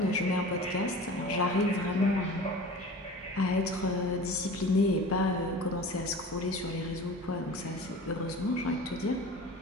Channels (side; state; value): both; normal; correlation 0.38